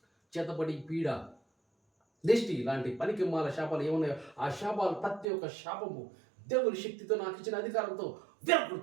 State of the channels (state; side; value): drops out; left; at 5.2 s